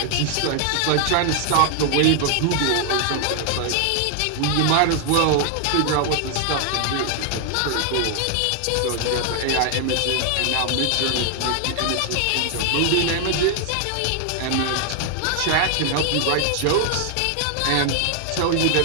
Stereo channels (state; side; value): different; both; correlation 0.00